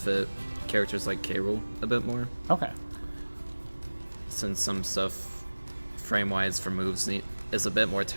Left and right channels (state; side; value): inverted; both; correlation -1.00